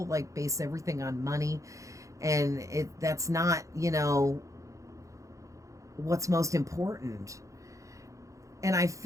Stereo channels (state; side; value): late; left; 0.15 ms